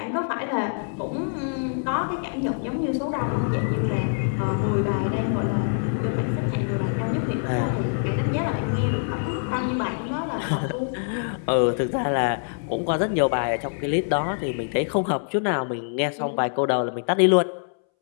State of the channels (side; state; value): right; silent; 62 dB below the other